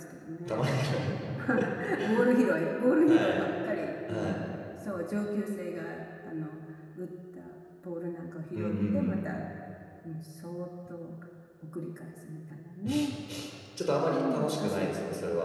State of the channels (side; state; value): both; identical; correlation 1.00